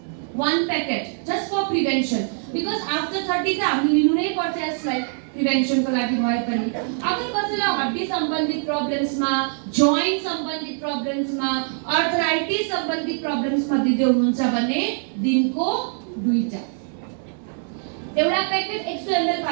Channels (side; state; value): left; silent; 59 dB below the other